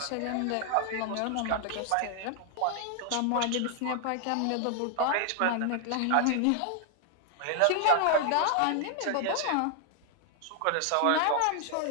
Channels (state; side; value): different; both; correlation 0.00